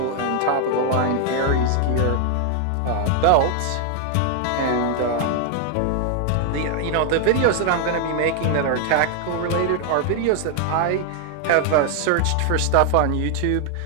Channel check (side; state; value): both; different; correlation 0.00